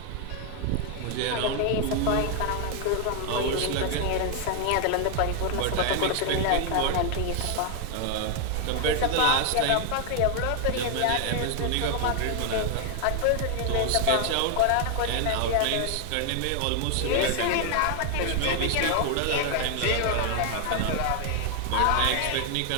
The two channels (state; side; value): different; both; correlation 0.00